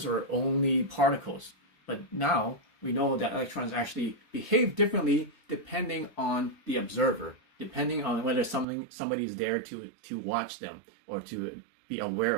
are only particles. But now we know that electrons actually behave differently depending on the observer, depending on whether somebody's there to watch them or to be aware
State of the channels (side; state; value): left; drops out; at 8.7 s